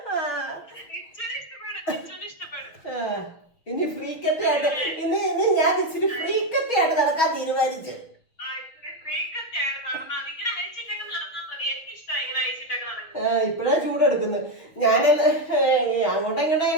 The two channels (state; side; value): late; right; 6.6 ms